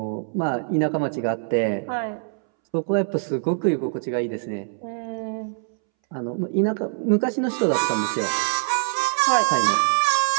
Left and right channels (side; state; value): left; silent; 63 dB below the other